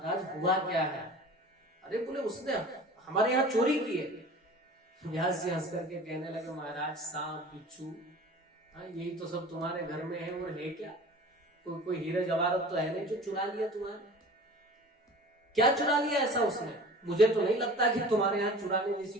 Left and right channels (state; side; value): normal; both; correlation 0.41